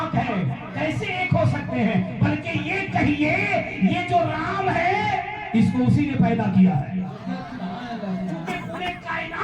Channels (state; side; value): identical; both; correlation 1.00